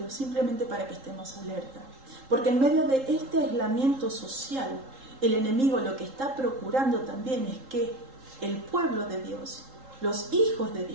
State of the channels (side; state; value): left; late; 3.8 ms